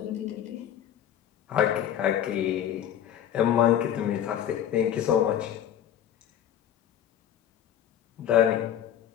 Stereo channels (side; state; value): right; quieter; 10.4 dB